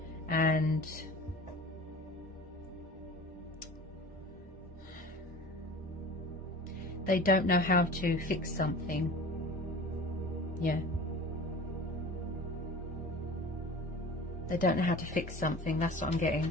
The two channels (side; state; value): both; normal; correlation 0.39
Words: And they don't know how to fix something. Yeah. They don't know how to fix something. That's what I'm